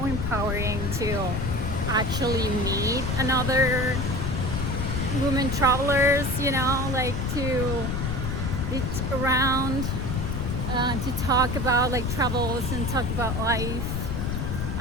empowering to actually meet another women travelers, you know, like to be around, to talk about like travels and talk about life.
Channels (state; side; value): noise; left; rumble, 1 dB below the sound